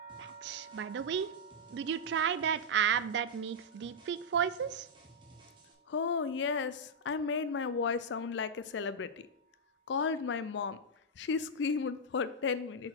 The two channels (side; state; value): both; normal; correlation -0.05